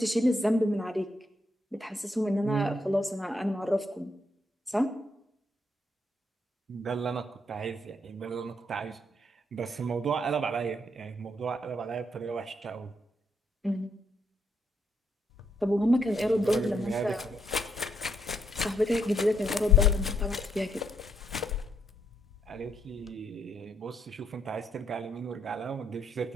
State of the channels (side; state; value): both; normal; correlation 0.74